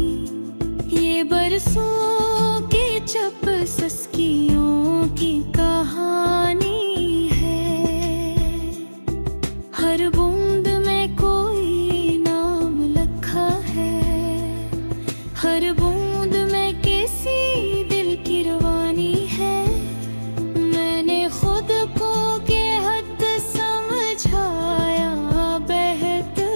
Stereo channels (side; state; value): both; inverted; correlation -1.00